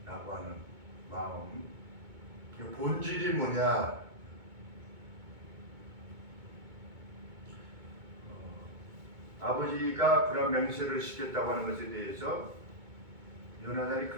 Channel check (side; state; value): left; late; 2.2 ms